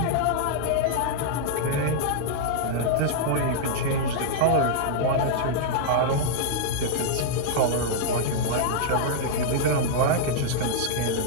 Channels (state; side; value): different; both; correlation -0.01